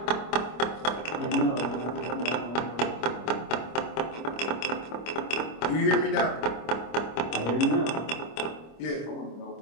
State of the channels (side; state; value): right; late; 25 ms